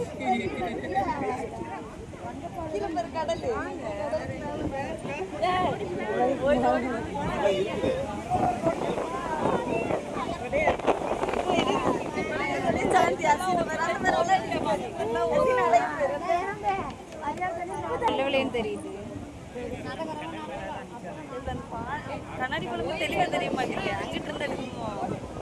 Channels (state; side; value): identical; both; correlation 1.00